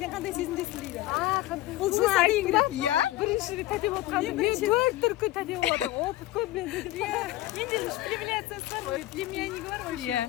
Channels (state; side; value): quieter; right; 16.3 dB